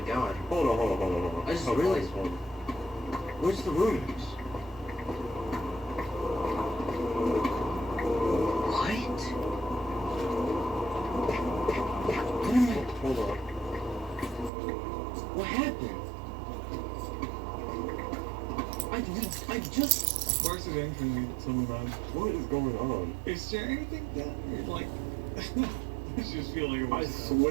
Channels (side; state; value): left; drops out; at 14.5 s